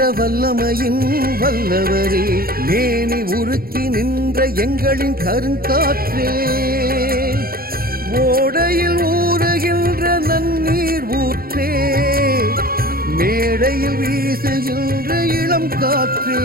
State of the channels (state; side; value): late; left; 0.43 ms